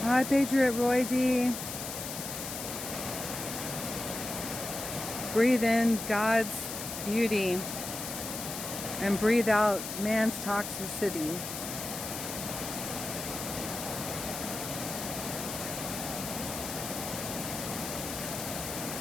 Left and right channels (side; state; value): left; noise; hiss, 6 dB below the sound